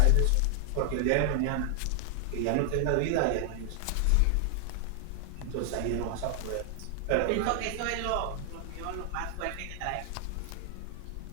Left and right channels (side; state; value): both; different; correlation 0.00